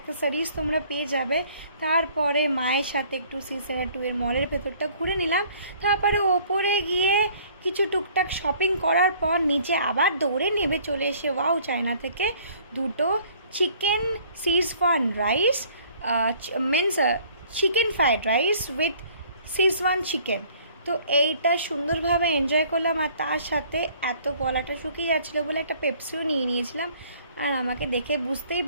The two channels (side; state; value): both; inverted; correlation -0.57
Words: তোমরা পেয়ে যাবে। তারপরে মায়ের সাথে একটু সি-সেন্ট এর মলের ভেতরটা ঘুরে নিলাম। তারপরে ওপরে গিয়ে কিছু টুকটাক শপিং করার পর নিচে আবার দৌড়ে নেমে চলে এসে ওয়াও চায়না থেকে দুটো chicken Schezwan rice, means chicken fried rice with Schezwan chicken. তো এইটা সুন্দরভাবে এনজয় করলাম। আর তার সাথে এত গলাটা শুকিয়ে যাচ্ছিলো বলে একটা পেপসিও নিয়ে নিয়েছিলাম। আর আমাকে দেখে বুঝতেই